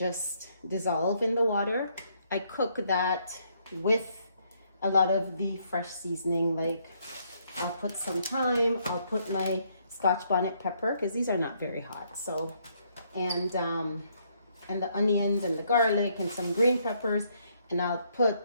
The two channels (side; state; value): both; inverted; correlation -0.71